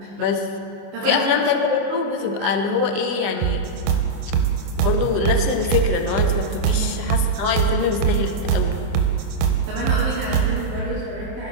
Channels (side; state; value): left; late; 25 ms